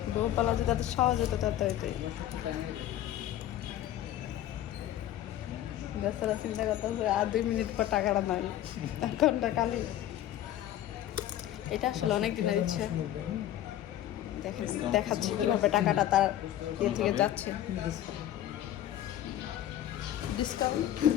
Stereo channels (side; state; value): right; quieter; 12.4 dB